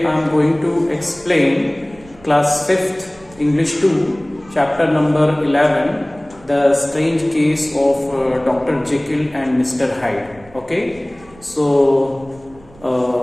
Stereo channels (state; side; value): noise; right; rumble, 25 dB below the sound